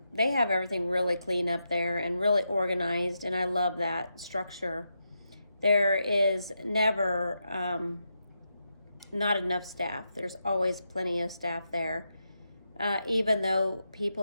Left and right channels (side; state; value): both; inverted; correlation -0.85